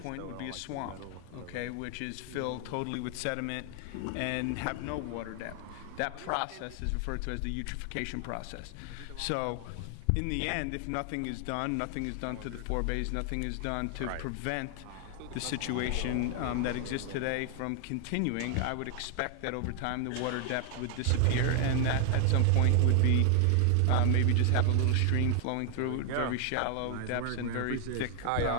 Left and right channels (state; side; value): different; both; correlation 0.00